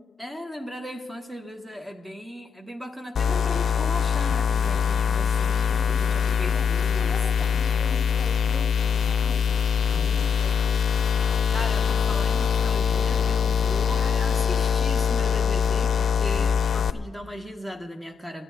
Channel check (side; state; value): right; quieter; 6.4 dB